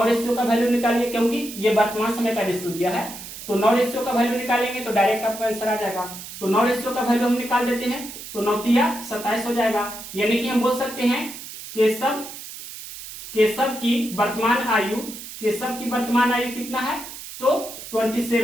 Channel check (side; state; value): right; noise; hiss, 12 dB below the sound